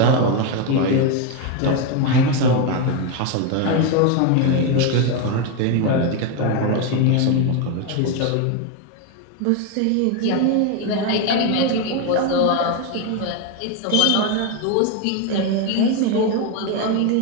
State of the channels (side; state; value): both; different; correlation 0.02